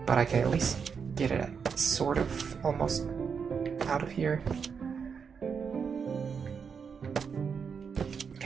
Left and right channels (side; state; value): left; quieter; 6.3 dB